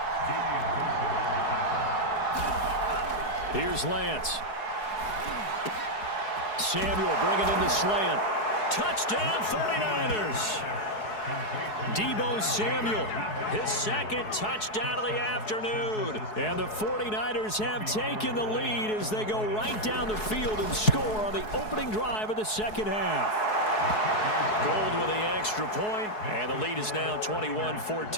Here's Lance. Samuel bringing in the slant. Touchdown 49ers. Deebo Samuel, his 2nd touchdown of the afternoon. And the 49ers have taken the lead as they go right down the field and score on the opening drive of the second half. Gold with the extra point, and the lead is now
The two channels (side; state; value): right; late; 4.7 ms